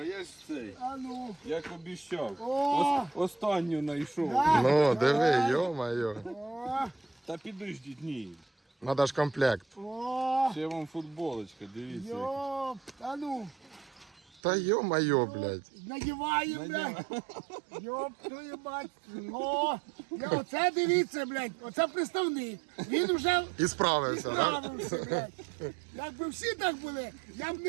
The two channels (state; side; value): drops out; left; at 14.4 s